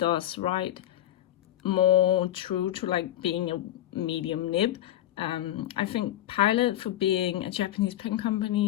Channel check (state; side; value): quieter; right; 13.0 dB